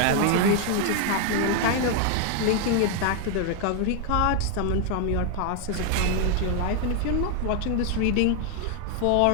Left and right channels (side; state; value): both; different; correlation 0.00